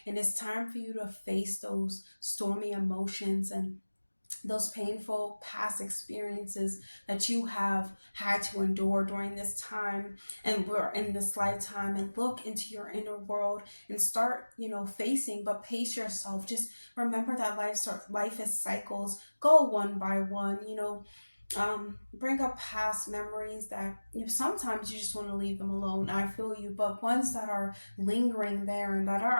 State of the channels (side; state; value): both; inverted; correlation -1.00